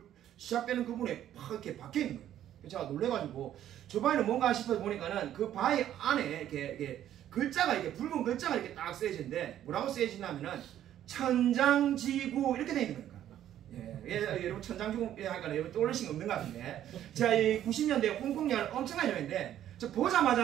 시작되는 부분에 팍 이렇게 박혀 있는 거예요. 제가 놀래가지고 저 바위는 뭔가 싶어서 보니까는 그 바위 안에 이렇게 글자가 이렇게 붉은 글자가 이렇게 딱 쓰여지는데 뭐라고 쓰여지냐면은 천장지구 이렇게 돼 있는 거예요. 여러분 천장지구 하니까 여러분 떠올리신 거 없는 것 같은데 제가 이 90년대 홍콩 영화를 엄청나게 좋아했는데 저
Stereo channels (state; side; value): quieter; left; 11.4 dB